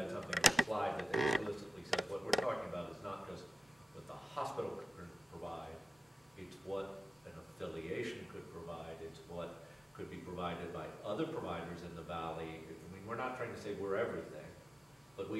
something on the slide that explicitly says what we're talking about is not just what the hospital could provide, it's what an affiliation could provide, it's what could be provided by other providers in the valley. I mean, we're not trying to say we're everything, but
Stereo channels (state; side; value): normal; both; correlation 0.95